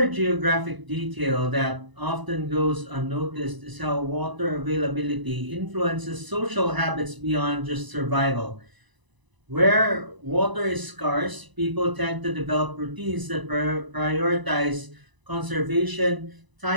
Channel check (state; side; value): late; left; 1.0 ms